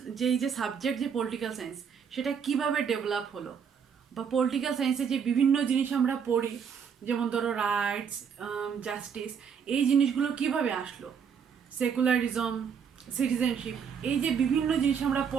যেই যে সাবজেক্ট যে পলিটিক্যাল সায়েন্স সেটা কিভাবে ডেভেলপ হলো, বা পলিটিক্যাল সায়েন্সে যে বিভিন্ন জিনিস আমরা পড়ি, যেমন ধরো রাইটস, জাস্টিস, এই জিনিসগুলো কিভাবে আসলো, সেকুলারিজম, সিটিজেনশিপ, এই যে বিভিন্ন জিনিস আমরা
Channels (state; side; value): quieter; left; 7.0 dB